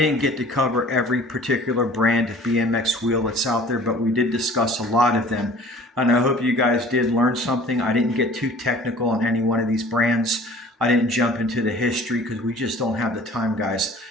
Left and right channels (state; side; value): normal; both; correlation 0.48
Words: get to cover every particular brand of BMX wheel that's out there, but we did discuss a lot of them. And I hope you guys did learn something. I didn't get too technical on any one of these brands. I didn't jump into the history because we just don't have the time, guys.